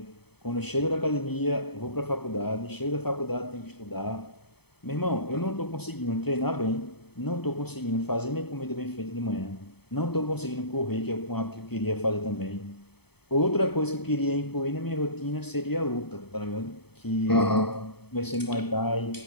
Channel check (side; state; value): right; late; 0.97 ms